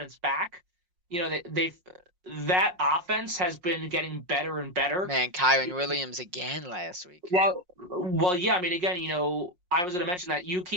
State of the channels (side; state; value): left; late; 5.5 ms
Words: back. That offense has been getting better and better. Man, Kyren Williams again last week. Well, yeah. I mean, again, I was going to mention that you